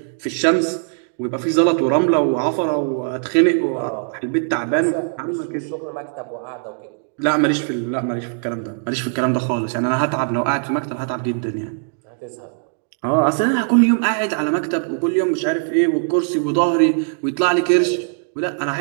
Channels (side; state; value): left; silent; digital silence